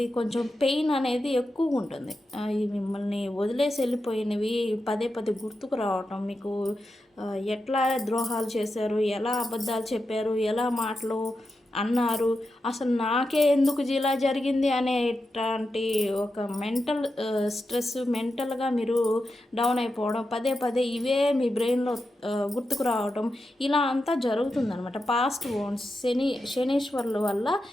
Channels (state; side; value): normal; both; correlation 0.89